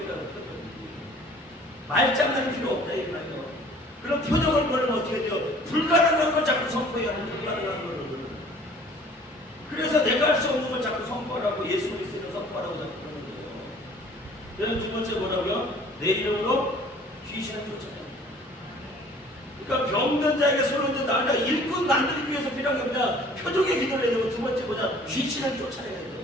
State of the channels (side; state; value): both; normal; correlation 0.51